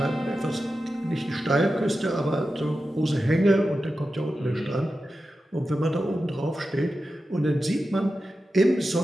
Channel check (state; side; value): normal; both; correlation 0.92